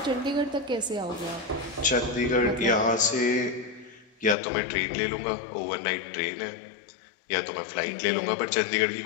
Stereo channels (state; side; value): drops out; right; at 4.4 s